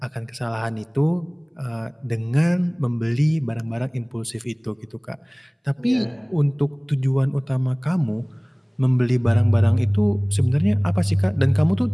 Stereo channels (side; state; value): both; identical; correlation 1.00